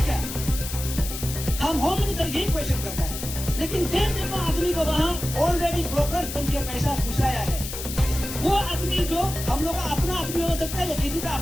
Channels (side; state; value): left; noise; hiss, 8 dB below the sound